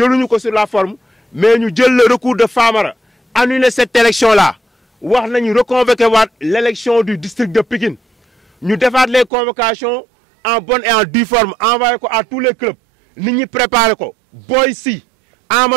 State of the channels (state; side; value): drops out; left; at 9.3 s